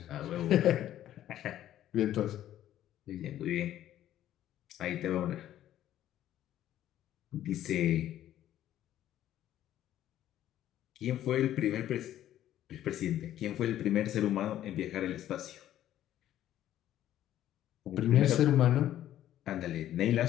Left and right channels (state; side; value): quieter; right; 12.3 dB